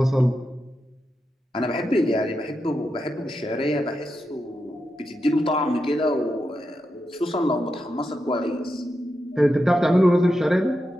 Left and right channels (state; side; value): normal; both; correlation 0.87